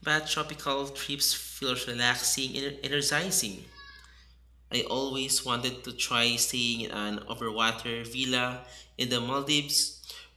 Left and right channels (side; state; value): both; identical; correlation 1.00